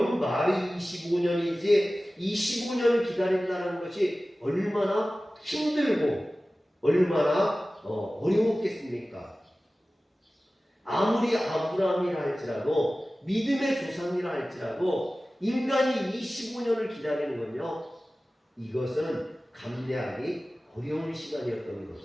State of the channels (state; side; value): normal; both; correlation 0.96